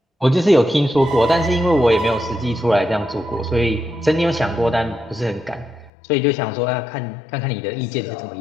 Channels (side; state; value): right; drops out; at 5.9 s